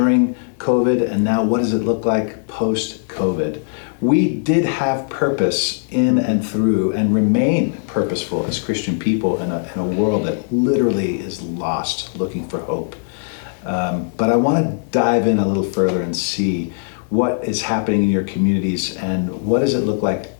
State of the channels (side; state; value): right; silent; digital silence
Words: COVID, and now what does it look like post-COVID? We did have purpose in and through and remain purposeful as Christian people in a world that literally is lost, looking for hope. But I want to dive in a little further and see what is happening in your communities and what does it look like